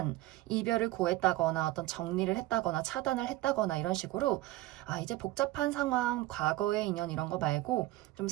이별을 고했다거나 어떤 정리를 했다거나 차단을 했다거나 이런 식으로 이제 복잡한 상황, 과거의 인연 이런 거 말고 좀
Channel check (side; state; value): left; quieter; 17.1 dB